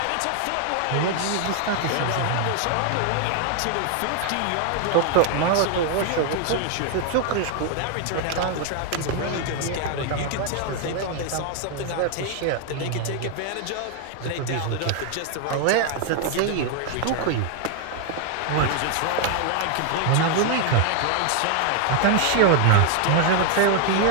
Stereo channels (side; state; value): both; different; correlation 0.00